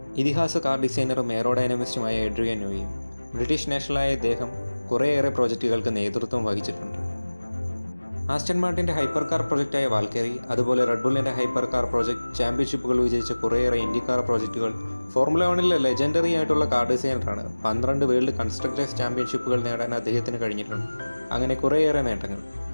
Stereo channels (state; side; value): inverted; both; correlation -1.00